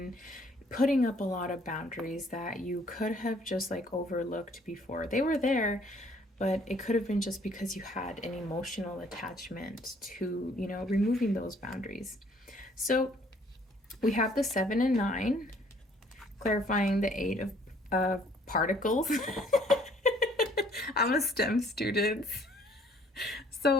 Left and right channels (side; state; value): both; normal; correlation 0.60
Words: putting up a lot of boundaries that you could have just like overlooked before. They were there, but it could have been just because you had an emotional attachment to, you know, removing those boundaries. So we have the 7 and 9, clarifying the 8 of particles. I'm a STEM student.